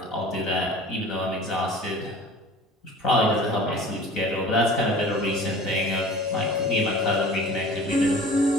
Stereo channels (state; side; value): normal; both; correlation 0.43